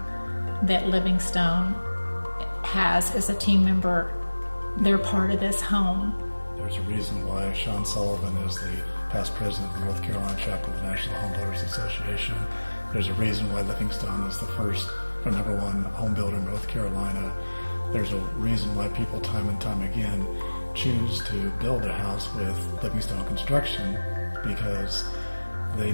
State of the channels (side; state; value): both; inverted; correlation -1.00